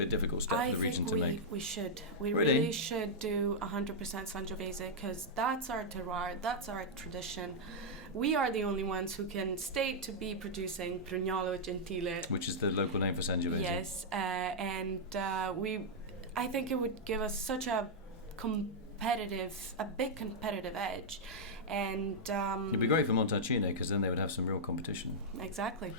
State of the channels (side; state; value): both; normal; correlation -0.06